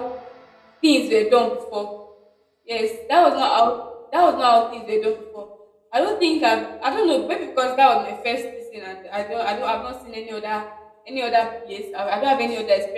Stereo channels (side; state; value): both; identical; correlation 1.00